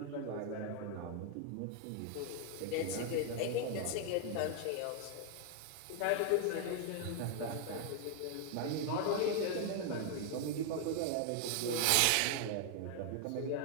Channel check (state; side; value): different; both; correlation 0.00